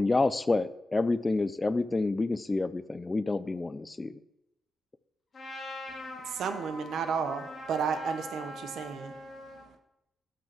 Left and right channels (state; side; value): normal; both; correlation 0.88